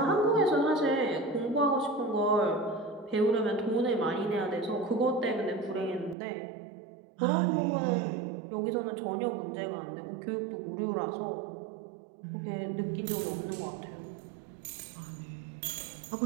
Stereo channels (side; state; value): left; drops out; at 6.2 s